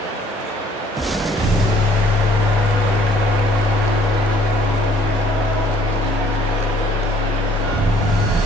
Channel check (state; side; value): normal; both; correlation 0.59